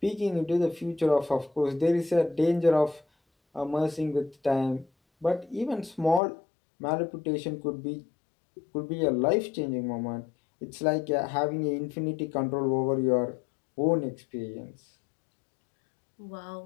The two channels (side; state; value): right; drops out; at 6.2 s